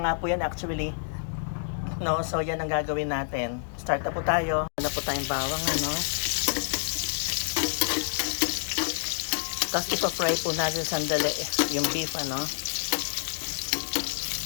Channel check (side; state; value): right; silent; digital silence